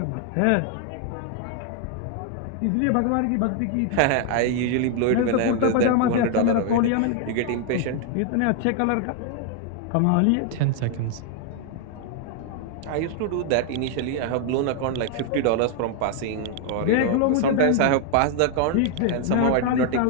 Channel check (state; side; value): different; both; correlation 0.00